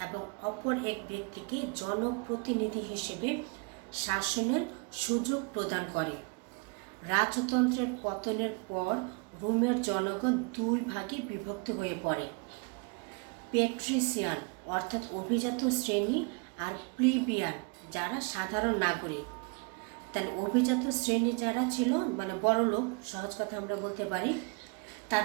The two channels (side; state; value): left; quieter; 33.6 dB